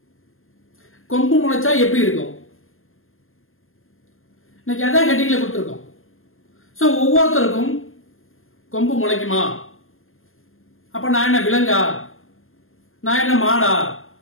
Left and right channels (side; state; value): right; late; 0.60 ms